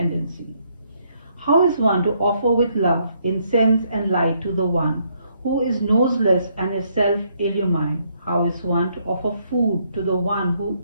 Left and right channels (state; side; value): inverted; both; correlation -0.72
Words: How is one to offer with love, incense and light to the one who is noseless and is self-illumined? How is one to offer food to the one who